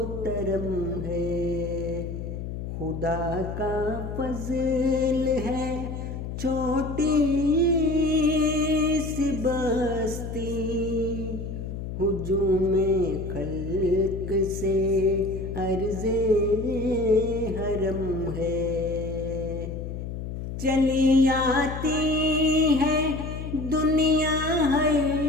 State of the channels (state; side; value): noise; left; hum, 7 dB below the sound